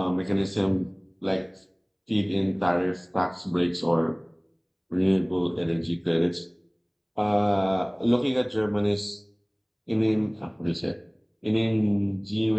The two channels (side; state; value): both; identical; correlation 1.00